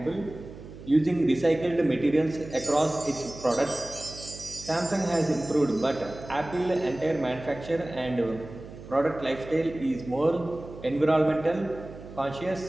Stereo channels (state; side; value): noise; right; hum, 15 dB below the sound